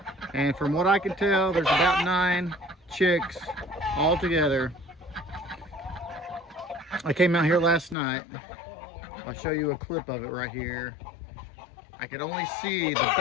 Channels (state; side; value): drops out; right; at 8.0 s